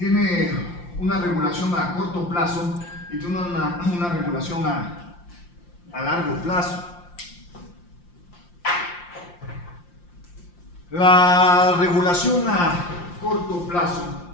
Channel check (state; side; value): late; right; 5.7 ms